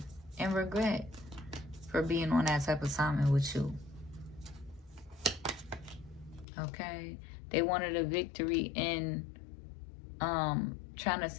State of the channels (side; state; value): right; drops out; at 6.5 s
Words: In regret for being on that type of assignment with you. Okay. They wanted a victory in trying to